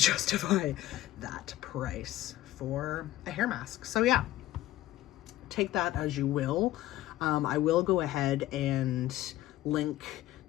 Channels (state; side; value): quieter; right; 15.1 dB